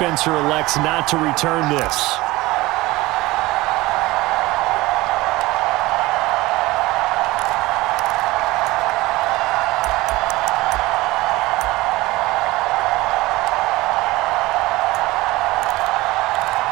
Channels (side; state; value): left; quieter; 19.8 dB